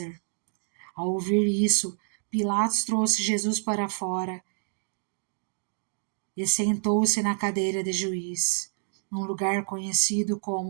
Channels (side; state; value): left; silent; digital silence